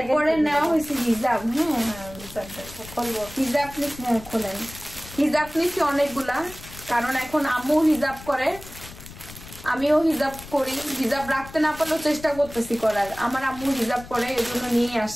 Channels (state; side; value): noise; left; rumble, 16 dB below the sound